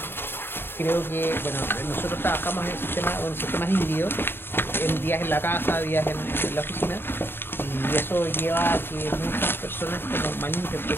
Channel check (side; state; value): right; late; 0.11 ms